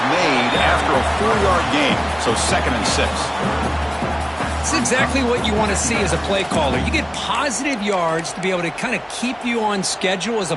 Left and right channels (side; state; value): both; identical; correlation 1.00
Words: made after a 4-yard gain, so 2nd and 6. It's exactly what you want to see as a play caller. You get positive yards to be able to kind of keep you on schedule as